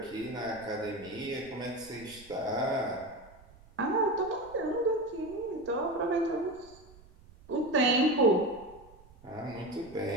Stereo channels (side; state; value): right; noise; rumble, 24 dB below the sound